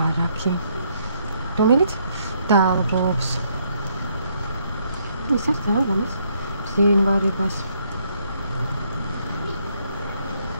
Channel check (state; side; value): inverted; both; correlation -0.71